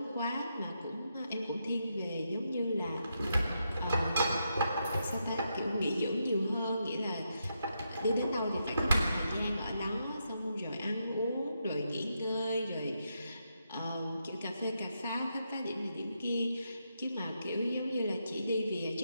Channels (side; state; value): both; inverted; correlation -0.82